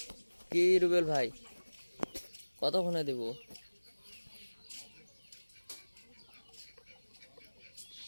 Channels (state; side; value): inverted; both; correlation -1.00